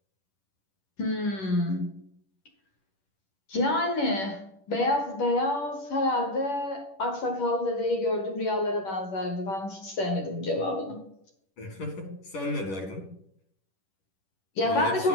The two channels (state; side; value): late; right; 10 ms